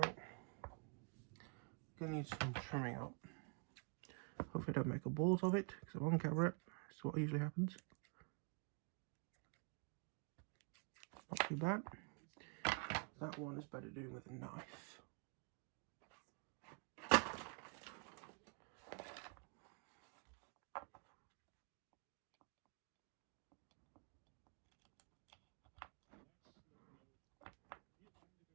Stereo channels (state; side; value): quieter; left; 37.1 dB